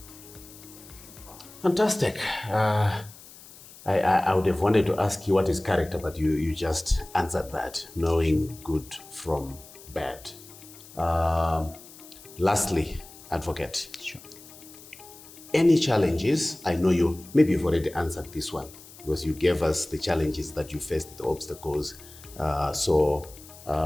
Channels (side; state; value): left; noise; hiss, 19 dB below the sound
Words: Fantastic. I would have wanted to ask you what is character, but you just answered that, knowing good from bad. Lastly, advocate. Sure. Any challenges? I know maybe you've already answered this one because you gave us the challenges that you faced, the obstacles.